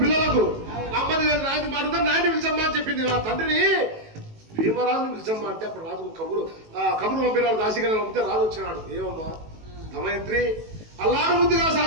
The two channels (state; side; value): late; left; 18 ms